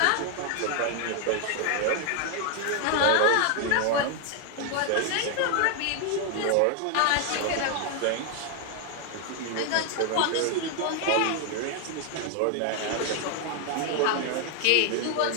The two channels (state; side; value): different; both; correlation 0.00